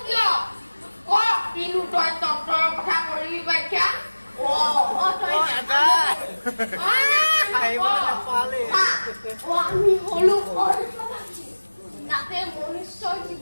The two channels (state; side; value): inverted; both; correlation -1.00